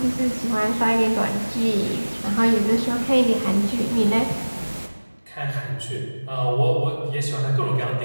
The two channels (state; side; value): inverted; both; correlation -1.00